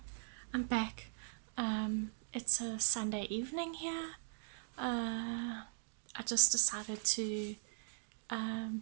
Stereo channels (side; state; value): left; silent; digital silence